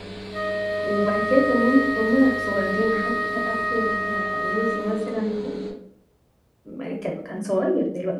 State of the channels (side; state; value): both; identical; correlation 1.00